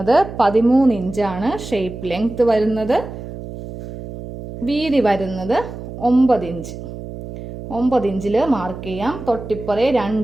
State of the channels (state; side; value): noise; right; hum, 11 dB below the sound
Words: 13 ഇഞ്ചാണ്. ഷേപ്പ് ലെങ്ത് വരുന്നത്. വീതി വരുന്നത് 9 ഇഞ്ച്. 9 ഇഞ്ചിൽ മാർക്ക് ചെയ്യാം. തൊട്ടിപ്പുറേ